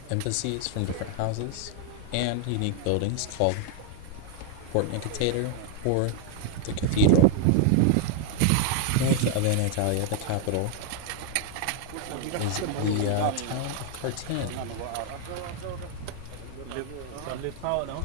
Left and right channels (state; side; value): different; both; correlation 0.00